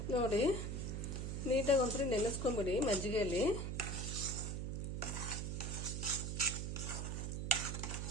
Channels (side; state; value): right; noise; hum, 2 dB below the sound